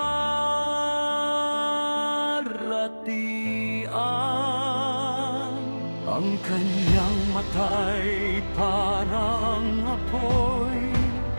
Ang kanyang mata'y parang apoy,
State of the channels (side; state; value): both; inverted; correlation -1.00